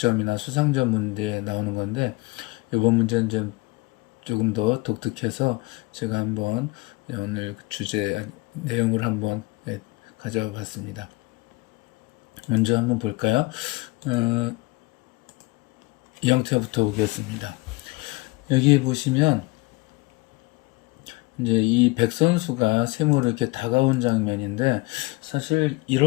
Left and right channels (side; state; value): right; quieter; 23.4 dB